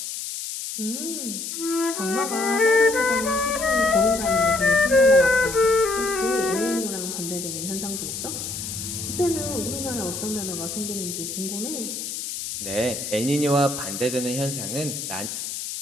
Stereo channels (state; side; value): noise; left; hiss, 6 dB below the sound